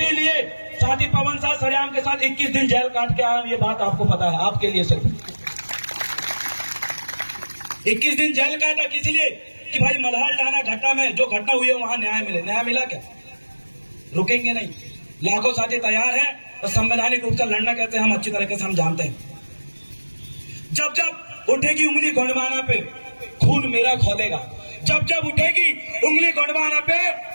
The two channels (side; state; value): both; inverted; correlation -1.00